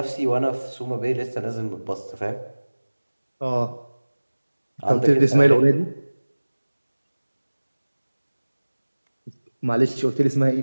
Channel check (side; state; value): both; inverted; correlation -1.00